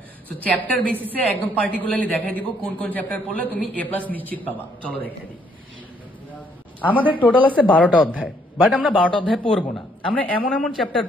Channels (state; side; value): normal; both; correlation 0.69